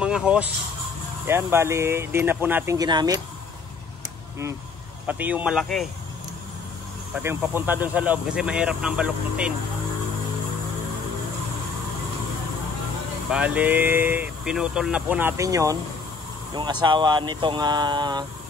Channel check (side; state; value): right; quieter; 4.8 dB